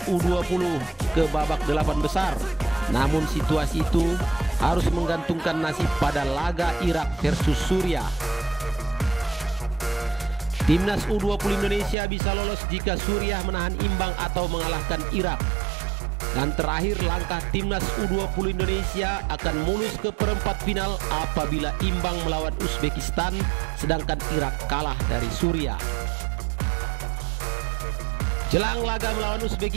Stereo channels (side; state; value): left; drops out; at 12.0 s